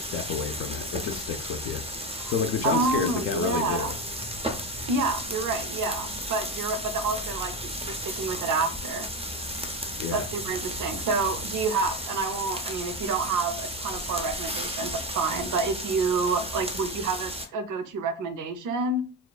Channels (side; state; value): both; normal; correlation 0.16